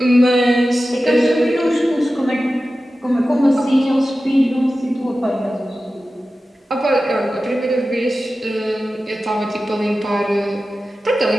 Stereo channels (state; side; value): normal; both; correlation 0.94